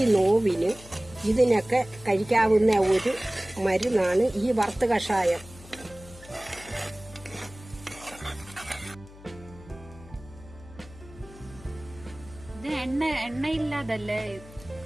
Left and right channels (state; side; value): noise; left; hum, 19 dB below the sound